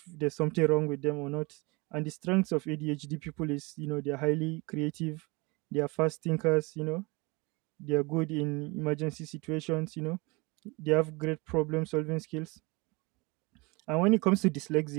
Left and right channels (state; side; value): quieter; left; 26.5 dB